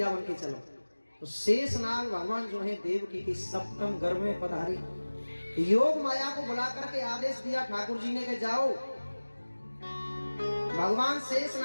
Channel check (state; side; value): inverted; both; correlation -1.00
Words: बन के चलो। तो शेषनाग भगवान जो है देवकी के 7वें गर्भ में पधारे। योग माया को बुला करके आदेश दिया ठाकुर जी ने कि जाओ। भगवान